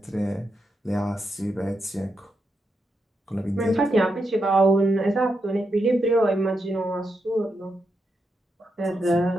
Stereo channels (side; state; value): both; normal; correlation 0.84